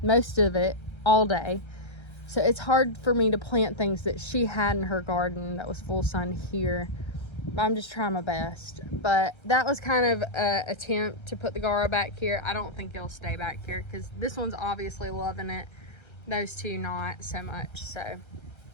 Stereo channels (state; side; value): late; right; 1.3 ms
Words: most of it all day. So it's hard for me to plant things that she had in her garden that was full sun here. I'm just trying my best. But that was kind of an attempt to put the Gara back here. I don't think it'll stay back here, because this one's obviously loving it. Those two not so much. So